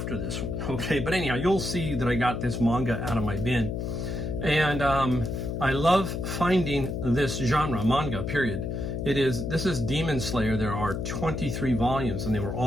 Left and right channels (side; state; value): left; noise; hum, 3 dB below the sound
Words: this one, okay? But anyhow, you'll see that I got this manga out of my bin. And I love finding this genre, manga, period. This is Demon Slayer. There are 23 volumes, and they were